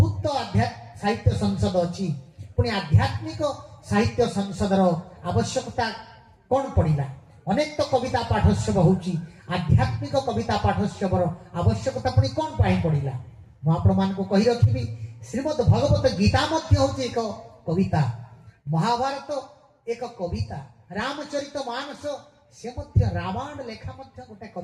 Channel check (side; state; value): both; identical; correlation 1.00